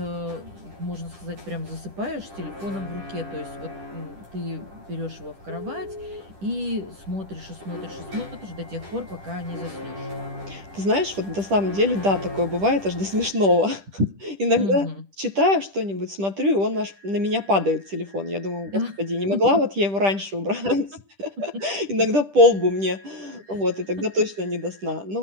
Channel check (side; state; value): left; late; 10 ms